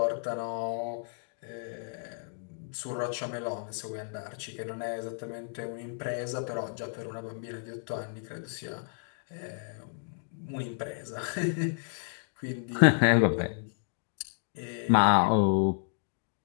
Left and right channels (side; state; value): right; silent; 57 dB below the other